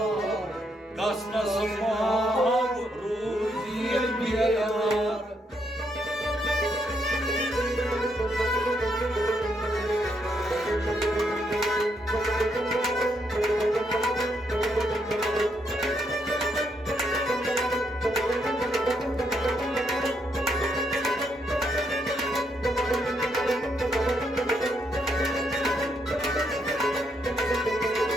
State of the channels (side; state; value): both; normal; correlation 0.76